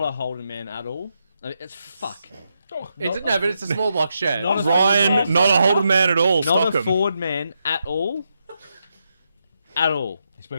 a Holden man at all. I mean, it's fuck. But it's a small block shed. Ryan, not a Holden man at all. Not Stockham. a Ford man at all. At all. He's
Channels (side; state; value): both; inverted; correlation -0.83